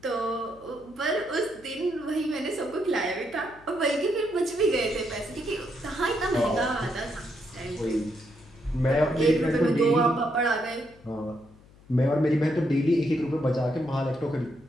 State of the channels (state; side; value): noise; left; hum, 25 dB below the sound